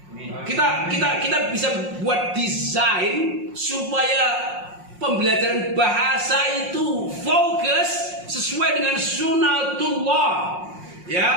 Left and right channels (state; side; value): late; left; 5.6 ms